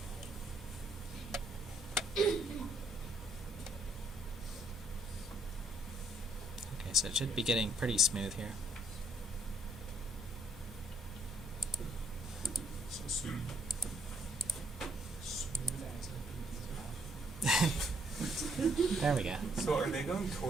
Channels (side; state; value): both; normal; correlation 0.69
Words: Okay, so it should be getting pretty smooth here. So smooth. Smooth as a There we go. So are they going